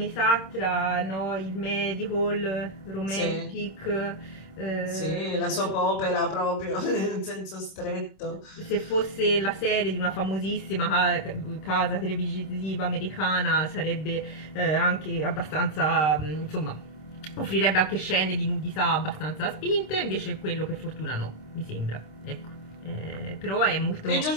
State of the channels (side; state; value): right; late; 26 ms